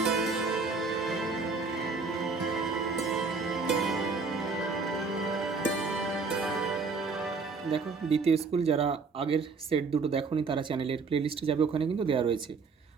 দেখো, দ্বিতীয় স্কুল যারা আগের সেট দুটো দেখোনি তারা চ্যানেলের প্লেলিস্টে যাবে, ওখানে কিন্তু দেওয়া রয়েছে।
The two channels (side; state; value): left; quieter; 4.6 dB